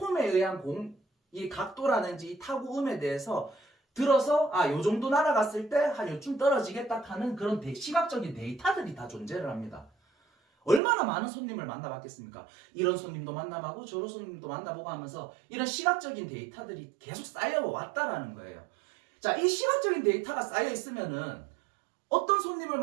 의한 공, 이 각도라든지 이 타구음에 대해서 들어서 요 정도 날아갔을 때 한 요쯤 떨어지겠다 하는 그런 시각적인 데이터들이 다 존재를 합니다. 얼마나 많은 손님을 만나봤겠습니까? 이런 손님도 만나보고 저런 손님도 만나보고 하면서 이런 시각적인 데이터들이 계속 쌓여왔다라는 거예요. 자, 이 시각적인 데이터가 쌓여 있으면은 어떤 손님을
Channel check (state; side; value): drops out; left; at 10.8 s